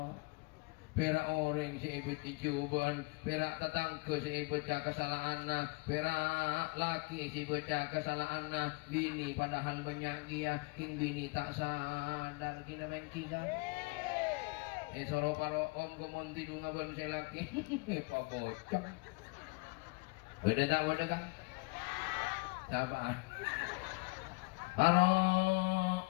perak orang si ibu dicuban, perak tetangga si ibu kesalahan, perak laki si ibu kesalahan, bini padahal banyak dia, bini tak sadar kina bengki kan. Soroh paro om kemonti dunga ban si laki, pak bocong. Beda tak beda kan? Siapaan? Paro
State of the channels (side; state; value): right; quieter; 26.9 dB